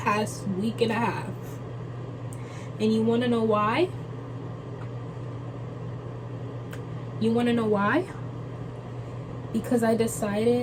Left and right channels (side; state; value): both; identical; correlation 1.00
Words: week and a half. And you want to know why? You want to know why? Because I